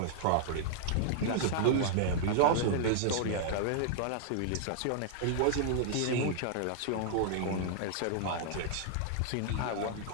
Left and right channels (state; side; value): different; both; correlation -0.01